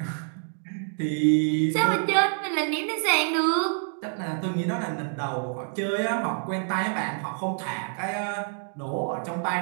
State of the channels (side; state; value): left; silent; digital silence